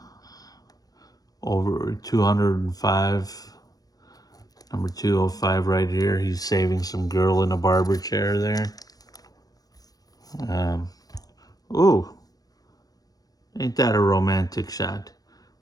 Over 205. Number 205 right here. He's saving some girl in a barber chair there. Ooh. Ain't that a romantic shot?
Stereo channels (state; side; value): late; right; 0.18 ms